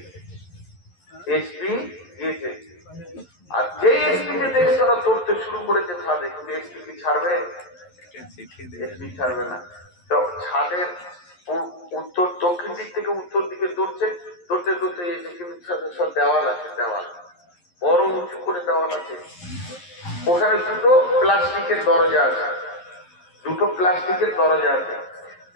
আর যে এসপি কে দেখে তারা ধরতে শুরু করেছে ছাদে, কিন্তু এসপি কি ছাড়বে? এসপি ছাড়বে না। তো ছাদের উত্তর দক্ষিণ দিক থেকে উত্তর দিকে দৌড়তে এসে, কিন্তু সব দেওয়াল আছে, দেওয়াল বড় উঁচু করে দেওয়াল আছে, ওখানে দুটো প্লাস্টিকের দরজা আছে,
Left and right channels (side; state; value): right; late; 11 ms